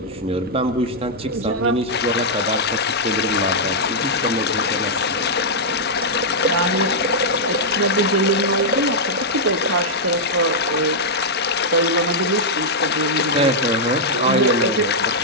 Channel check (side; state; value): both; normal; correlation -0.06